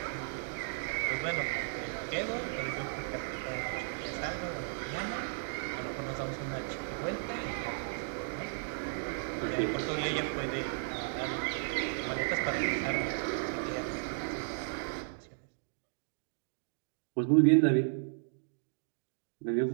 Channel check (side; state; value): left; silent; digital silence